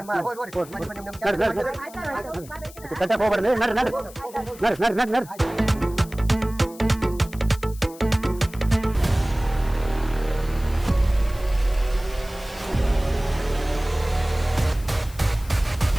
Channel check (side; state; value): left; noise; hiss, 20 dB below the sound